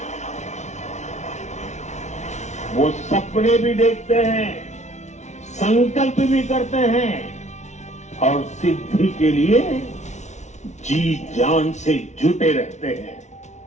वो सपने भी देखते हैं, संकल्प भी करते हैं और सिद्धि के लिए जी जान से जुटे रहते हैं।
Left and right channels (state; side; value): late; right; 0.33 ms